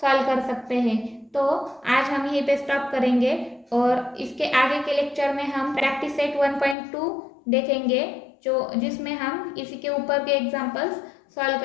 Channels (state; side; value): drops out; right; at 6.8 s